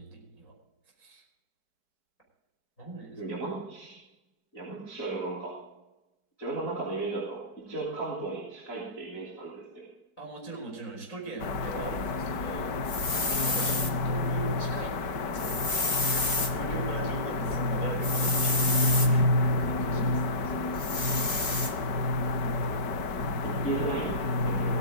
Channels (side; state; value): right; late; 4.7 ms